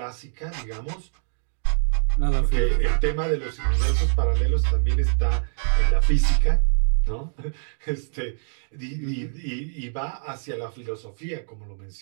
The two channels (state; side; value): silent; left; 62 dB below the other